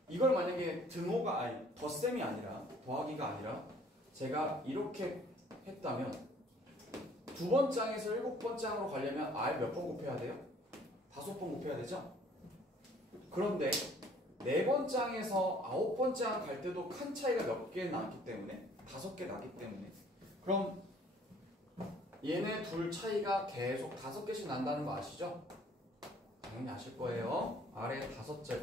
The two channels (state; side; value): normal; both; correlation 0.57